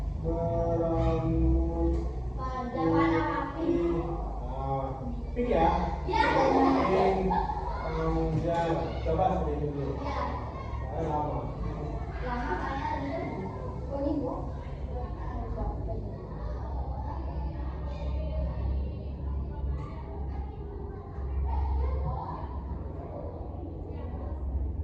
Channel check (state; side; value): identical; both; correlation 1.00